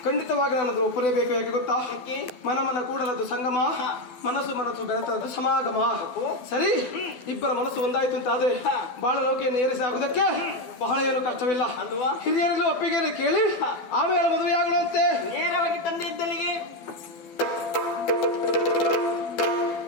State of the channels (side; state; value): right; late; 12 ms